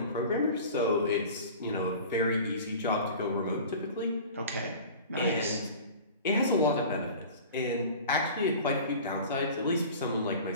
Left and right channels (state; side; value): inverted; both; correlation -0.40